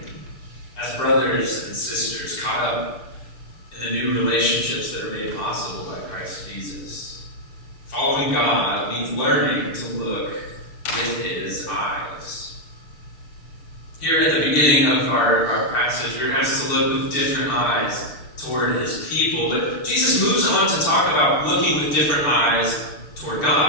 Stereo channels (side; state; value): right; late; 6.7 ms